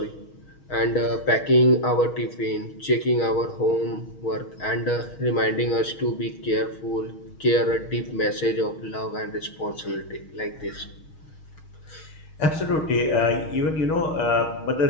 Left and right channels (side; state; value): right; late; 6.4 ms